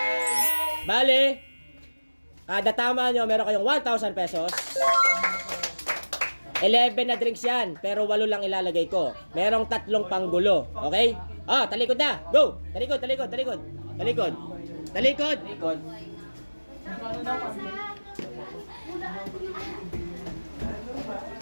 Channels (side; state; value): both; inverted; correlation -1.00